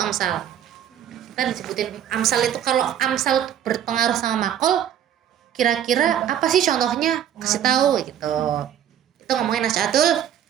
amsal. Kita disebutin amsal itu, kalau amsal berpengaruh sama maqal, kira-kira apa sih contohnya? Kasih tahu gitu. Itu ngomongin Nasy'atul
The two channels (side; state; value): left; quieter; 10.2 dB